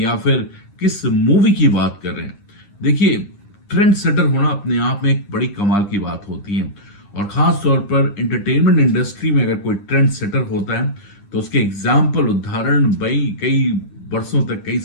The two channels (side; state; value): right; late; 9.9 ms